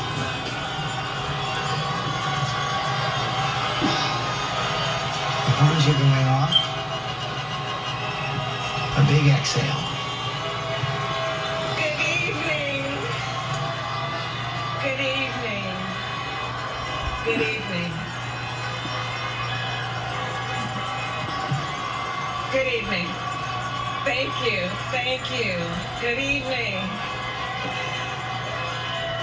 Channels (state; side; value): identical; both; correlation 1.00